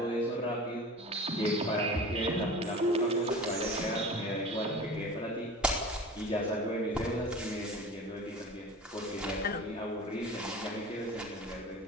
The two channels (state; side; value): normal; both; correlation 0.37